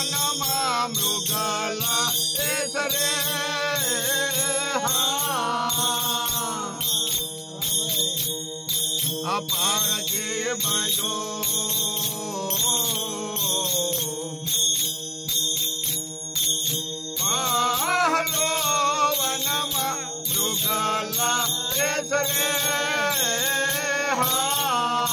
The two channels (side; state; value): both; identical; correlation 1.00